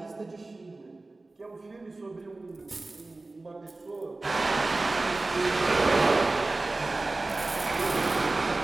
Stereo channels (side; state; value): left; quieter; 3.2 dB